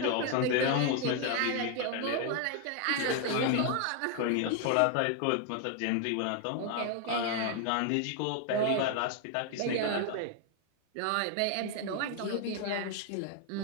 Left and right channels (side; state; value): both; different; correlation 0.00